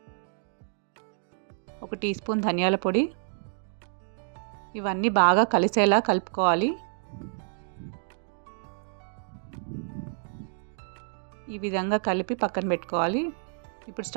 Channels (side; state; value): left; silent; digital silence